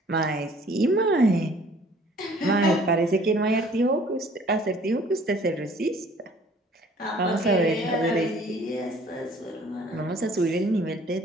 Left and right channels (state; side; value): normal; both; correlation 0.55